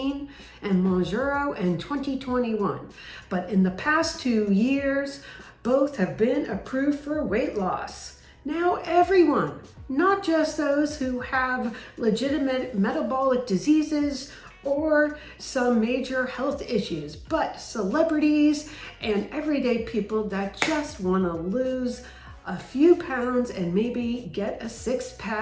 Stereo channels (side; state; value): both; identical; correlation 1.00